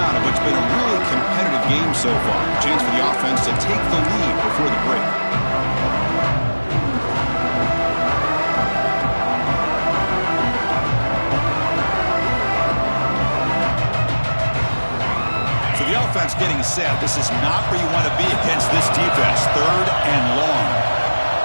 of what's been a really competitive game so far. Chance for the offense to take the lead before the break. So the offense getting set. This is not where you want to be against this defense. 3rd and long.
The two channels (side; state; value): both; inverted; correlation -1.00